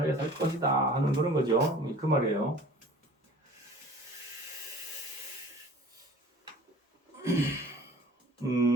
살 것이다 하는 그런 거죠. 그 말이에요.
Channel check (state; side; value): normal; both; correlation 0.47